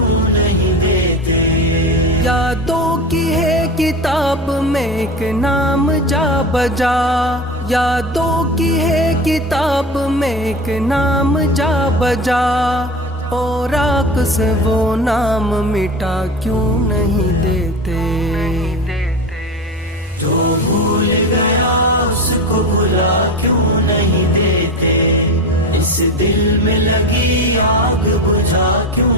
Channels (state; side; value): normal; both; correlation 0.26